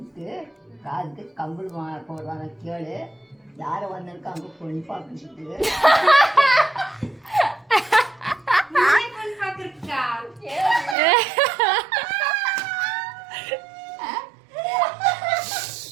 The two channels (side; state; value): left; drops out; at 11.0 s